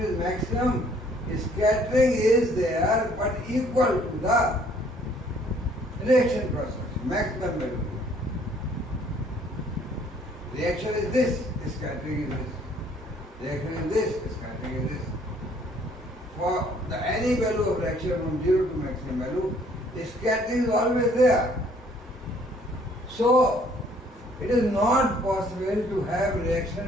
is maximum, scattering is there but equal to the reaction process, maximum value. Reaction is this, scattering is this. Reaction is this, scattering is this. For any value of reaction from 0 to maximum value, the scattering is always there. So, it is not possible to have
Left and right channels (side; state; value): both; normal; correlation 0.60